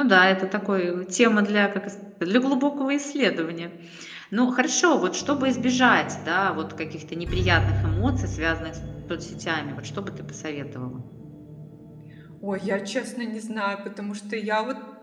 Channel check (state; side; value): identical; both; correlation 1.00